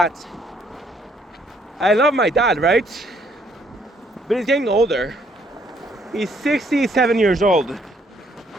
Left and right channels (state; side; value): normal; both; correlation 0.67